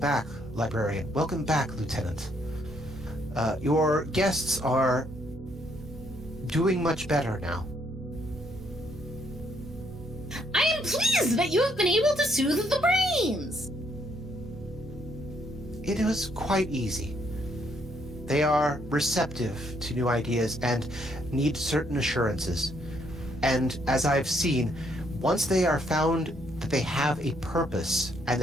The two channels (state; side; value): normal; both; correlation 0.71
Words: librarian, welcome back, lieutenant. Your guests are doing much better now. I am pleased that you have been able to soothe the brains. It was quite easy. They are receptive to new ideas and need certain assurances. And as I've seen, once they are found that they have a purpose and